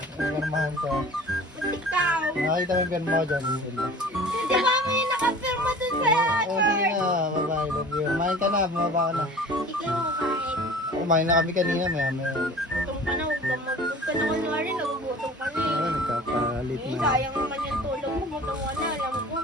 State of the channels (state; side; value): normal; both; correlation 0.43